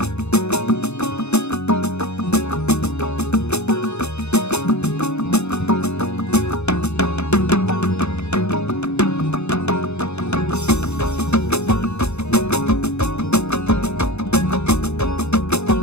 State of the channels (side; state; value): right; late; 0.81 ms